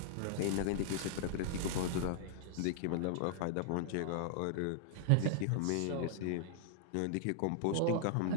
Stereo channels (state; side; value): different; both; correlation -0.01